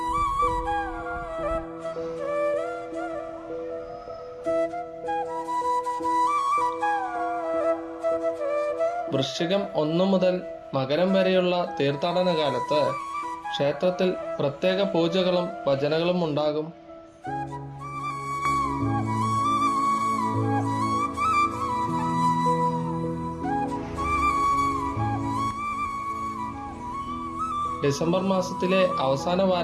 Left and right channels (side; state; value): both; identical; correlation 1.00